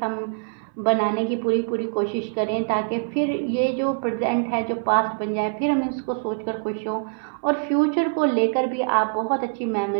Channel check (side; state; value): left; silent; 57 dB below the other